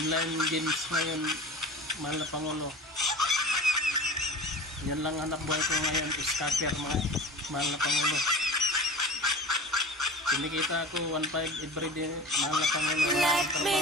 games ngayon, mahal na Pangulo. Yan lang hanap buhay ko ngayon, scatter mga mahal na Pangulo. Kinikita ako 1.5 everyday, mahal na Pangulo. Let me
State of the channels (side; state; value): both; normal; correlation 0.36